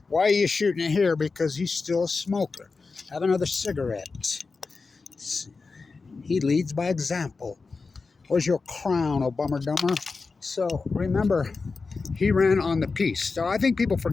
Why are you shooting it here? Because he's still a smoker. Have another cigarette. He leads by example. Where's your crown, Obummer dumber? So remember, he ran on the peace. So I think people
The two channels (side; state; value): right; quieter; 4.3 dB